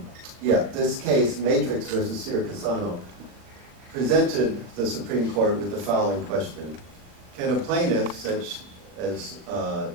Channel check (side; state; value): left; late; 39 ms